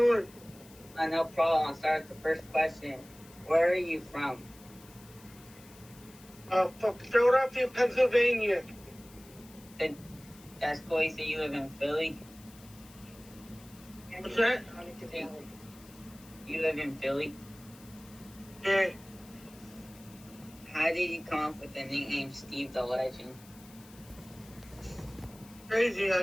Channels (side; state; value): left; noise; hiss, 22 dB below the sound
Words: No problem. I'll start with the first question. Where are you from? From Philadelphia, Pennsylvania. That's cool. You say you live in Philly? What's that? You live in Philly? Yeah. How did you come up with the nickname Steve the Legend? Crazy.